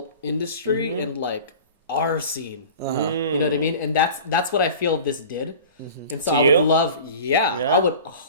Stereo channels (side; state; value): both; inverted; correlation -0.39